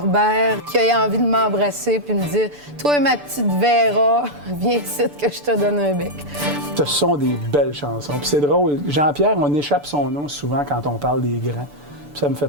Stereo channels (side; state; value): left; late; 6.9 ms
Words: qu'il ait envie de m'embrasser puis me dire « Toi, ma petite Véra, viens ici que je te donne un bec. » Ce sont des belles chansons. Puis c'est drôle, Jean-Pierre, on échappe son nom souvent quand on parle des grands. Puis ça me